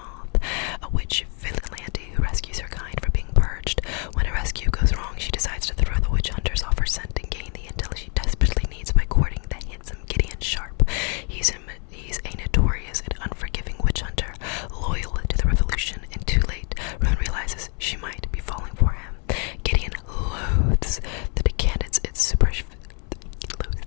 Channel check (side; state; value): right; quieter; 37.1 dB